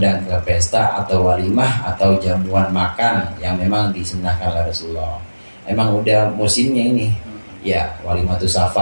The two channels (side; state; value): both; inverted; correlation -1.00